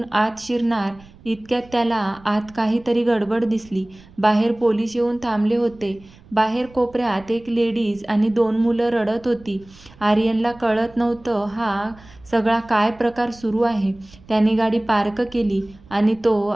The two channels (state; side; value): noise; right; rumble, 24 dB below the sound